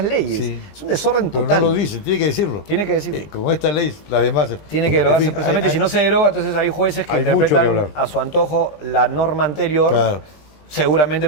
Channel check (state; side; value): late; right; 20 ms